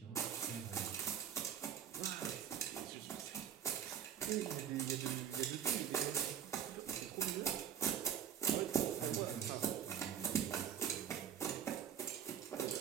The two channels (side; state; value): left; quieter; 8.9 dB